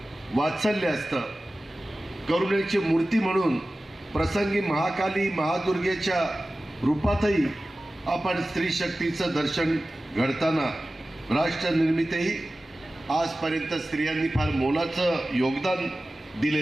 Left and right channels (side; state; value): both; normal; correlation 0.96